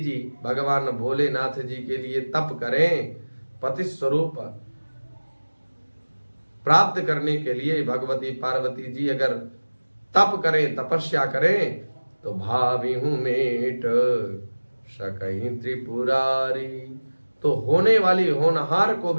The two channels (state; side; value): inverted; both; correlation -1.00